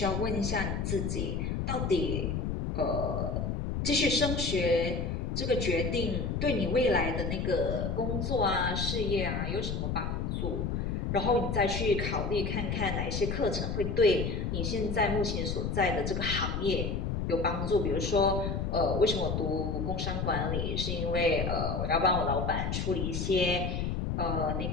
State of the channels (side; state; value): left; noise; rumble, 1 dB below the sound